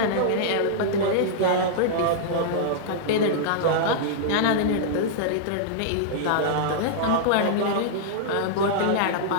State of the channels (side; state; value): both; different; correlation -0.02